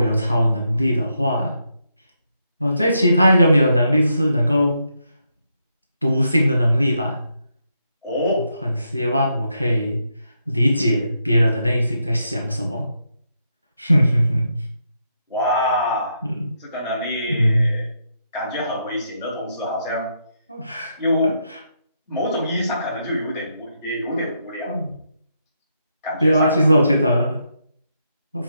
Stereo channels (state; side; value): inverted; both; correlation -0.80